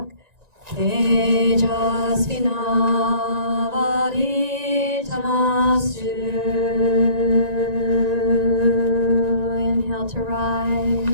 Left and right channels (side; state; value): left; late; 1.9 ms